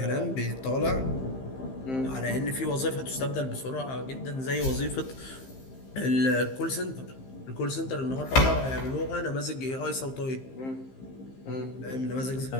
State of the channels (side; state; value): right; late; 15 ms